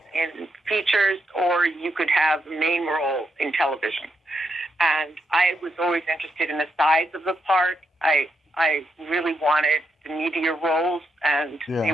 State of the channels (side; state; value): both; normal; correlation 0.81